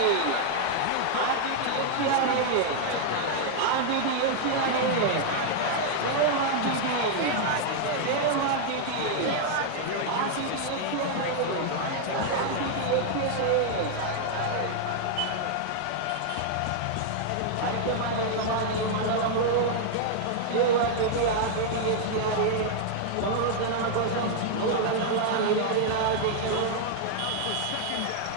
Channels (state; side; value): different; both; correlation -0.01